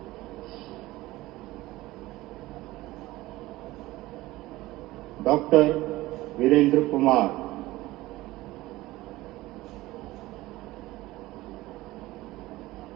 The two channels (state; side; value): quieter; left; 18.1 dB